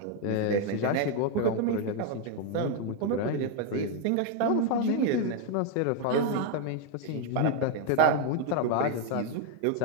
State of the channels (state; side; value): different; both; correlation 0.01